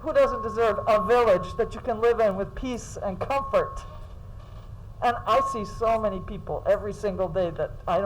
doesn't deserve a village that you can live in with peace and comfort? And I see so many people every single day that I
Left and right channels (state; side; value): identical; both; correlation 1.00